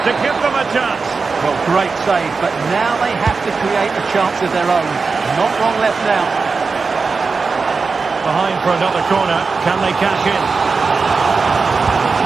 to give them a chance. Well, great save, but now they have to create a chance of their own. Not long left now. Behind for another corner. Can they cash in?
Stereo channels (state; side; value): quieter; left; 4.6 dB